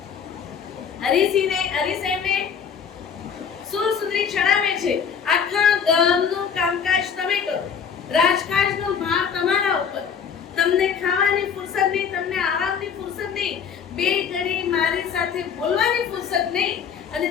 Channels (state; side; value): quieter; right; 7.0 dB